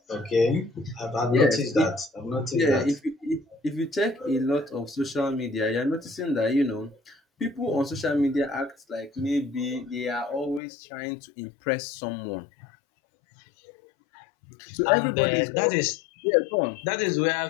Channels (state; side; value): drops out; right; at 10.6 s